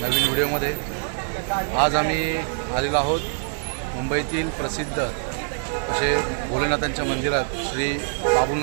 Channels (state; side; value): silent; left; digital silence